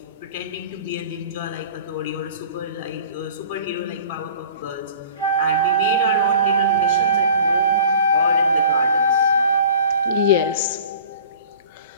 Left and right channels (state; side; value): inverted; both; correlation -0.44